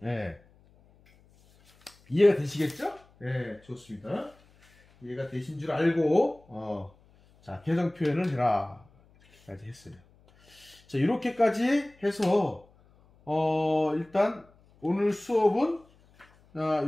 예. 이해가 되시겠죠? 예, 좋습니다. 이해가 되신 줄 알고, 자, 개성 표현을 해라. 이렇게까지 했어요. 자, 이렇게까지 해서, 일단, 오늘 수업은,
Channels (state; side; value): noise; left; hum, 30 dB below the sound